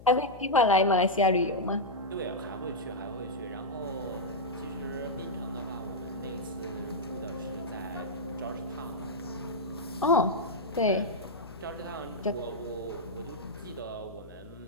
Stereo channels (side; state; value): left; noise; hum, 17 dB below the sound